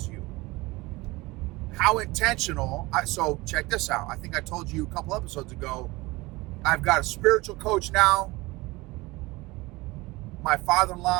you? How intentional? So check this out. I think I told you a couple episodes ago, I've got a spiritual coach now. My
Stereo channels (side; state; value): left; quieter; 22.1 dB